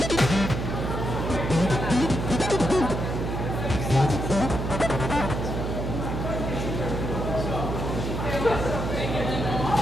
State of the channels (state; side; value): noise; right; hum, 3 dB below the sound